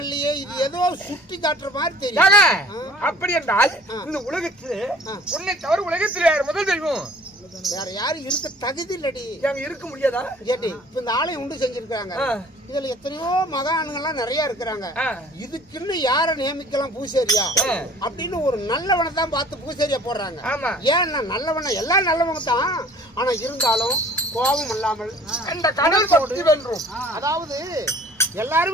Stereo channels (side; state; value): both; normal; correlation 0.51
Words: இல்லையே. இது ஏதோ சுட்டி காட்டுற மாதிரி தெரியும். அப்படி என்றால் இந்த உலகத்துல உன்னை தவிர உலகத்துல யார் முதல் தெய்வம்? வேற யாரும் இருக்க தகுதி இல்லடி. இருக்க முடியாதா? கேட்டி இப்ப இந்த ஆலயம் உண்டு செஞ்சிருக்காங்க. இதுல எத்தனையோ மகான்கள்லாம் நிறைய இருக்கிறாங்க. இதுக்குன்னு யார நியமிக்கலாம் பூசேரியா அப்படின்னு ஒரு நல்லவனை தான் பார்த்து பூசேரியா போடுறாங்க. ஏன்னா நல்லவன எல்லாம் நல்லவங்க தான். ஆனா இருந்தாலும் கோபம் இல்லாமல் அந்த கடல் பக்தி வென்றும். அதாவது